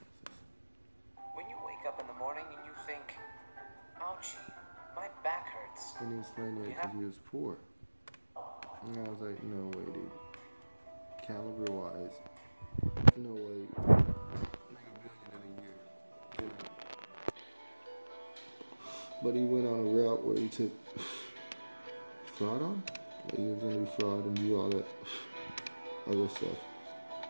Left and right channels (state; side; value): inverted; both; correlation -1.00